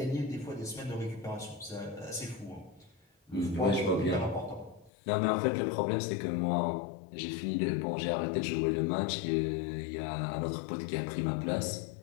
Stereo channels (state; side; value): drops out; right; at 4.9 s